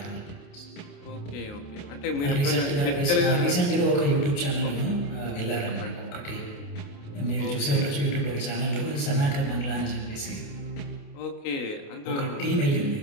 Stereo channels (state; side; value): late; right; 28 ms